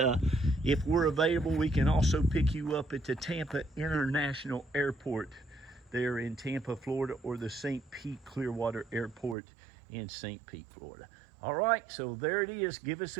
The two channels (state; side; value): drops out; left; at 9.3 s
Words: if we're available, we can also pick you up at the Tampa International Airport there in Tampa, Florida, or the St. Pete Clearwater Airport in St. Pete, Florida. All right, so there it is. Give us